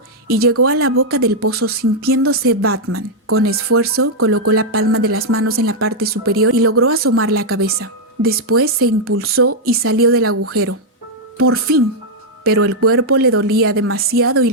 y llegó a la boca del pozo sintiéndose Batman. Con esfuerzo colocó la palma de las manos en la parte superior y logró asomar la cabeza. Después se impulsó y salió del agujero. ¡Por fin! Pero el cuerpo le dolía demasiado y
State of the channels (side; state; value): both; normal; correlation -0.03